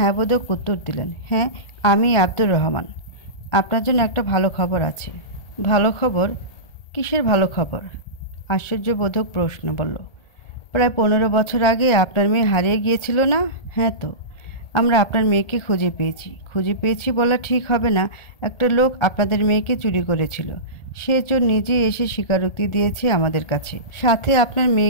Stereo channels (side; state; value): right; late; 1.8 ms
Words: বোধক উত্তর দিলেন। হ্যাঁ, আমি আব্দুর রহমান। আপনার জন্য একটা ভালো খবর আছে। ভালো খবর? কিসের ভালো খবর? আশ্চর্যবোধক প্রশ্ন বলল। প্রায় 15 বছর আগে আপনার মেয়ে হারিয়ে গিয়েছিল না? হ্যাঁ তো, আমরা আপনার মেয়েকে খুঁজে পেয়েছি বলা ঠিক হবে না। একটা লোক আপনাদের মেয়েকে চুরি করেছিল। সে চোর নিজেই এসে স্বীকারোক্তি দিয়েছে আমাদের কাছে। সাথে আপনার